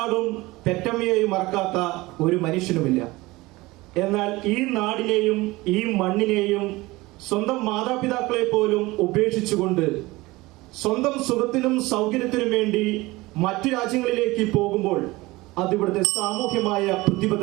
പെറ്റമ്മയെയും മറക്കാത്ത ഒരു മനുഷ്യനുമില്ല. എന്നാൽ ഈ നാടിനെയും ഈ മണ്ണിനെയും സ്വന്തം മാതാപിതാക്കളെ പോലും ഉപേക്ഷിച്ചുകൊണ്ട് സ്വന്തം സുഖത്തിനും സൗകര്യത്തിനും വേണ്ടി മറ്റു രാജ്യങ്ങളിലേക്ക് പോകുമ്പോൾ അതിവിടുത്തെ സാമൂഹ്യമായ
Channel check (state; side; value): quieter; left; 20.8 dB